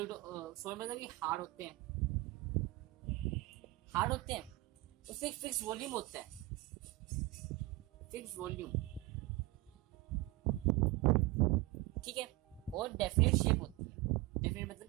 सॉलिड मतलब कि हार्ड होते हैं, हार्ड होते हैं, उससे एक फिक्स वॉल्यूम होता है, फिक्स वॉल्यूम, ठीक है, और डेफिनेट शेप होती है। डेफिनेट मतलब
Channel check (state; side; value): quieter; left; 19.9 dB